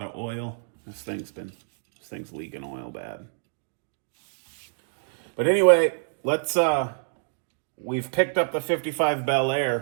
of oil? This thing's leaking oil bad. But anyway, let's we've picked up the 55 Bel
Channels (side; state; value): left; silent; digital silence